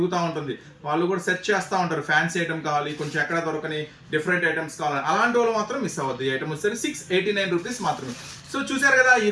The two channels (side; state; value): both; identical; correlation 1.00